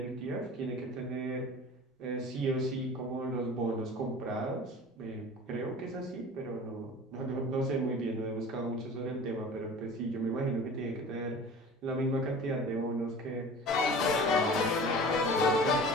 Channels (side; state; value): both; normal; correlation 0.40